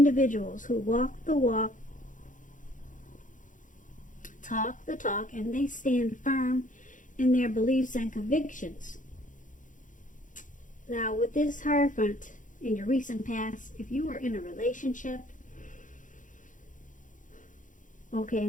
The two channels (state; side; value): late; right; 0.37 ms